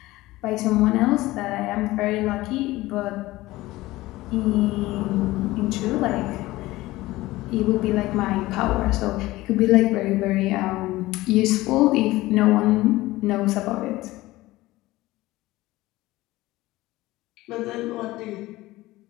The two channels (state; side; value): quieter; right; 18.3 dB